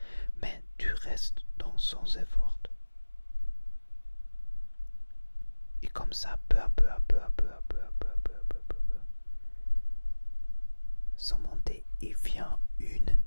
Mais tu restes dans sans effort. Et comme ça, peu à peu, sans monter, il vient une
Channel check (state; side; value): inverted; both; correlation -1.00